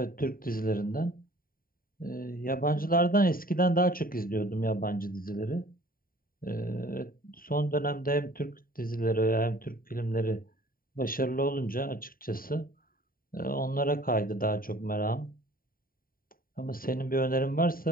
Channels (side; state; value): right; late; 0.42 ms